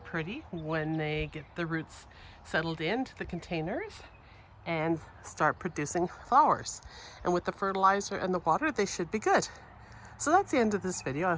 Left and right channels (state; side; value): identical; both; correlation 1.00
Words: when they get the roots settled into the containers and start producing flowers. And with the fertilizer and the water, they should be good. So that's the end of this video. I